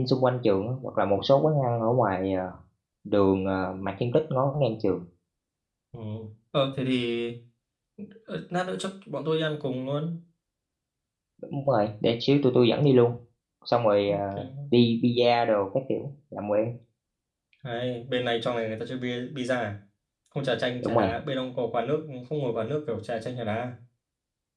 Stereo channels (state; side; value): identical; both; correlation 1.00